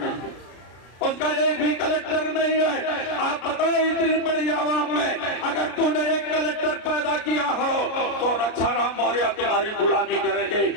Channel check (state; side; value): late; right; 33 ms